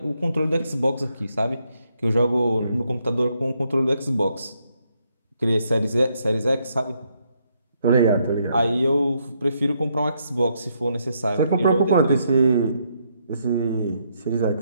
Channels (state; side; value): inverted; both; correlation -0.76